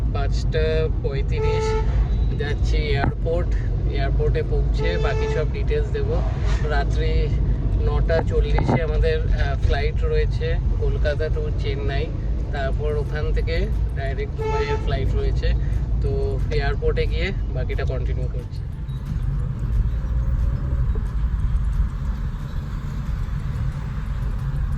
5:35। যাচ্ছি এয়ারপোর্টে পৌঁছে বাকি সব ডিটেলস দেব। রাত্রি 9:40 আমাদের ফ্লাইট রয়েছে কলকাতা টু চেন্নাই। তারপর ওখান থেকে ডাইরেক্ট দুবাইয়ের ফ্লাইট রয়েছে। তো এয়ারপোর্টে গিয়ে বাকিটা কন্টিনিউ করছি।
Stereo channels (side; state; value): both; identical; correlation 1.00